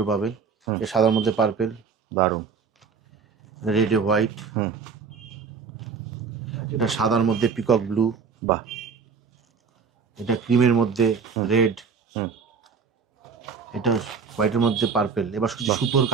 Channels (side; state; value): left; quieter; 5.7 dB